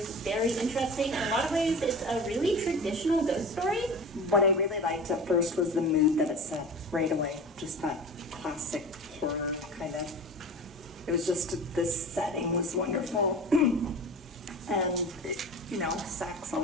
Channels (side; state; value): both; normal; correlation 0.34